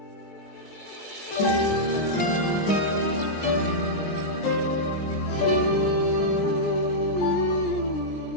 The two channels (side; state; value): right; late; 20 ms